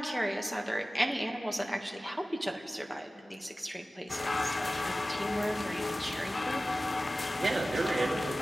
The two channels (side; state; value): both; normal; correlation 0.96